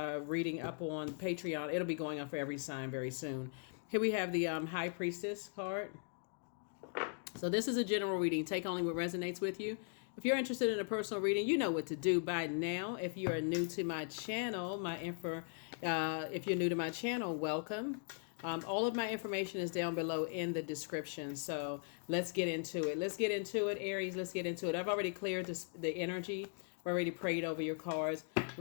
reading up on Patreon. It'll be going on for every sign very soon. Here we have the High Priestess card. So this is a general reading. Take only what resonates with you. If you're interested in a personal reading, you know what to do by now. If you are new to my channel, if you're new to my channel, welcome. All of my information is down below in the description. So let's get into it. Let's get into it, Aries. Let's get into it. I've already cleared the energy. I've already prayed over your cards.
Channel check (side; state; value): right; silent; 52 dB below the other